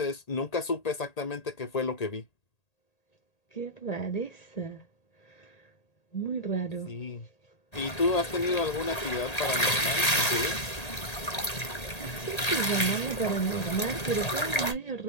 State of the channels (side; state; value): right; late; 1.8 ms